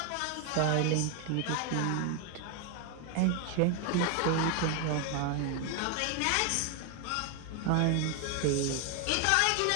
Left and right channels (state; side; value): different; both; correlation 0.01